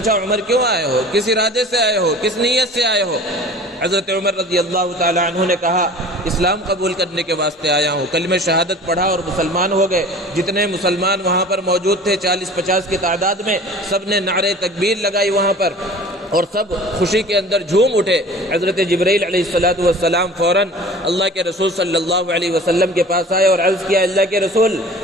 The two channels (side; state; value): both; normal; correlation 0.42